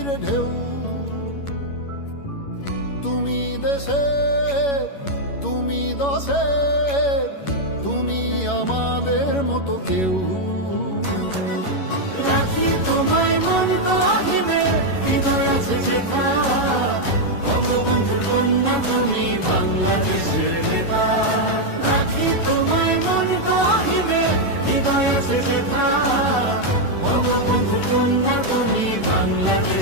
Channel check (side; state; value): right; late; 11 ms